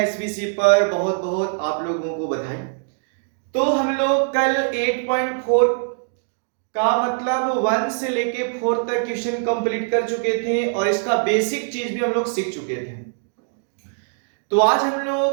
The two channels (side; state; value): left; silent; digital silence